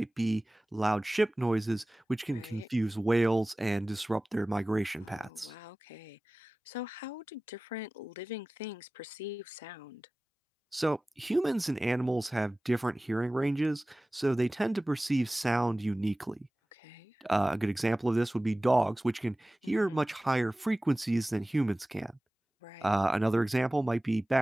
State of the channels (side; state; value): both; normal; correlation 0.98